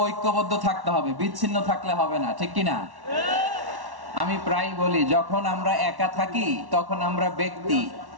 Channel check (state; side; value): late; left; 1.1 ms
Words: ঐক্যবদ্ধ থাকতে হবে, বিচ্ছিন্ন থাকলে হবে না, ঠিক কিনা? আমি প্রায় বলি, যখন আমরা একা থাকি তখন আমরা ব্যক্তি,